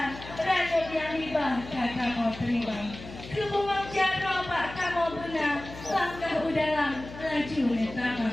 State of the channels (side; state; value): left; noise; hum, 14 dB below the sound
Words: ranuk yang hibah kamu terima. Kebuang jaro pak kamu benar, langkah udalang laju